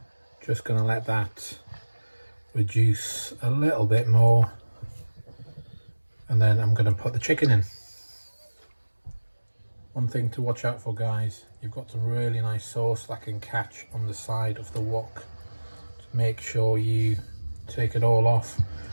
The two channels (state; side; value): inverted; both; correlation -1.00